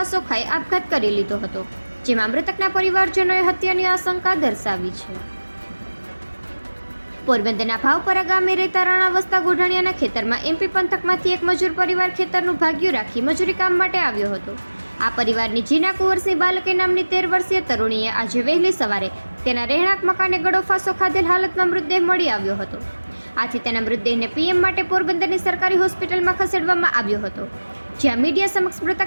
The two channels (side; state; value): both; inverted; correlation -1.00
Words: ખાઈ આપઘાત કરી લીધો હતો, જેમાં મૃતકના પરિવારજનોએ હત્યાની આશંકા દર્શાવી છે. પોરબંદરના ભાવપરા ગામે રહેતા રાણા વસ્તા ગોઢાણીયાના ખેતરમાં એમપી પંથકમાંથી એક મજૂર પરિવાર ખેતરનું ભાગ્યું રાખી મજૂરી કામ માટે આવ્યો હતો. આ પરિવારની જીના કુંવરસિંહ બાલકે નામની 13 વર્ષીય તરુણીએ આજે વહેલી સવારે તેના રહેણાંક મકાને ગળો ફાંસો ખાધેલ હાલતમાં મૃતદેહ મળી આવ્યો હતો. આથી તેના મૃતદેહને પીએમ માટે પોરબંદરની સરકારી હોસ્પિટલમાં ખસેડવામાં આવ્યો હતો, જ્યાં મીડિયા સમક્ષ